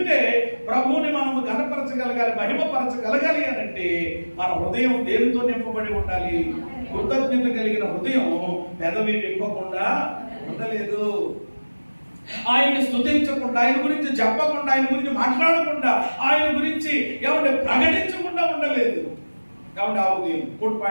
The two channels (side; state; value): both; inverted; correlation -1.00